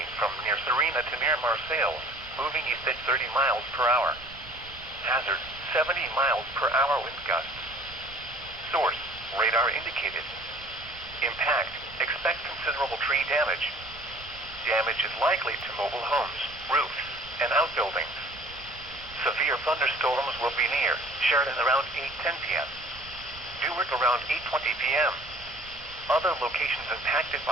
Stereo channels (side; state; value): right; noise; rumble, 19 dB below the sound